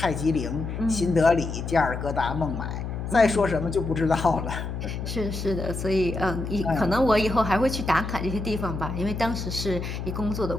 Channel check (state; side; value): noise; left; hum, 5 dB below the sound